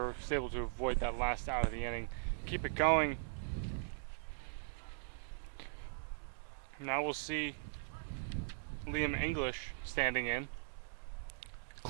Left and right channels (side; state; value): left; silent; digital silence